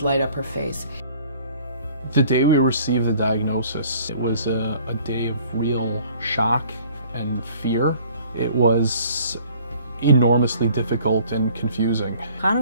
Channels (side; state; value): both; inverted; correlation -0.54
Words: light up her face. The day we received the diagnosis, it was a day of real shock and fear. It was enormously difficult and confusing. Chana